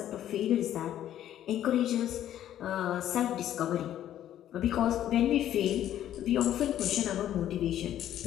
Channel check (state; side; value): quieter; right; 11.6 dB